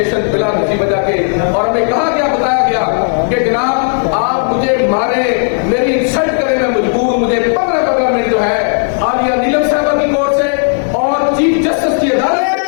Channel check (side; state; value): right; silent; digital silence